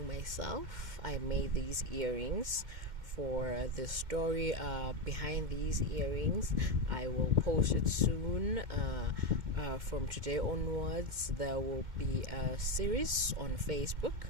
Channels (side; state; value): left; late; 2.1 ms